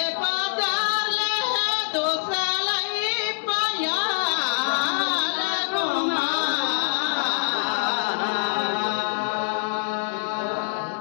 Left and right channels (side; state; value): right; silent; digital silence